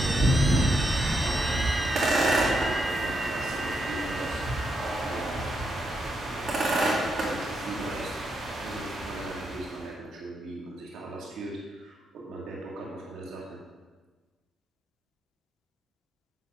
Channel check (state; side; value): normal; both; correlation 0.81